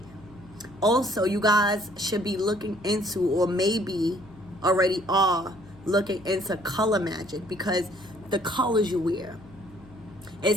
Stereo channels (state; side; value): noise; left; hum, 22 dB below the sound